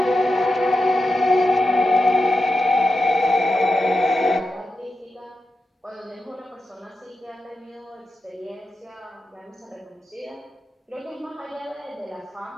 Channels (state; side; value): normal; both; correlation 0.89